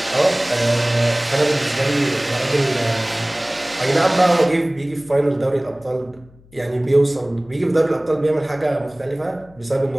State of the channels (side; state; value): left; noise; hum, 26 dB below the sound